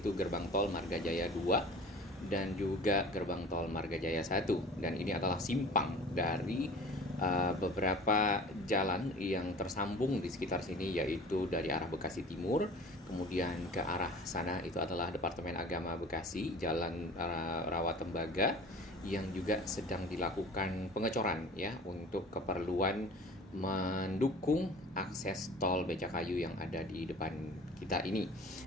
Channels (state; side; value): normal; both; correlation 0.42